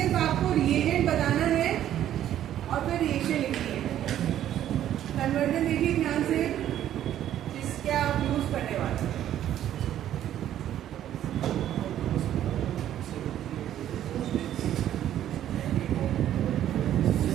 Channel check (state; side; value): quieter; left; 11.5 dB